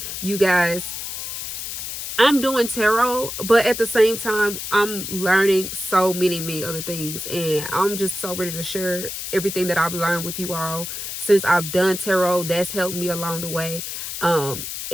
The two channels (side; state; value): left; noise; hiss, 6 dB below the sound